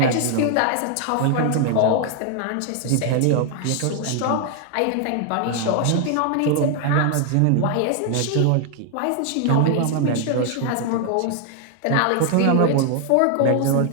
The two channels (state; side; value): different; both; correlation 0.00